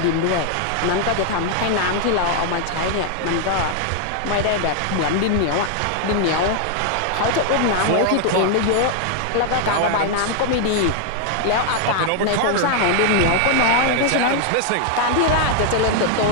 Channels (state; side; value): different; both; correlation 0.00